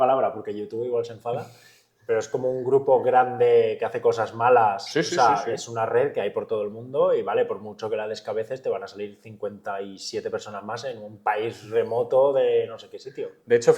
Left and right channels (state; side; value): identical; both; correlation 1.00